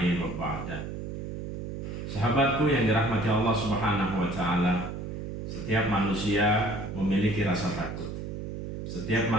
wa ba'da. Sahabatku yang dirahmati Allah Subhanahu wa taala, setiap manusia memiliki rasa takut. Setiap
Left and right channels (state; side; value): noise; right; hum, 6 dB below the sound